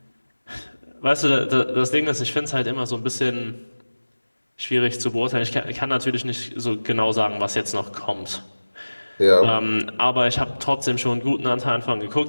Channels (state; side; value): inverted; both; correlation -1.00